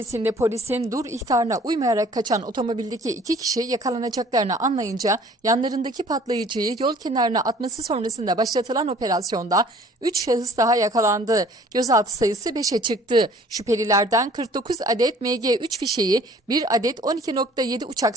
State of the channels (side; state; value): both; normal; correlation 0.53